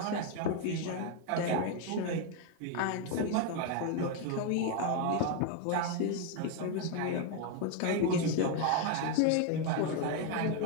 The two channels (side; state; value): both; different; correlation 0.01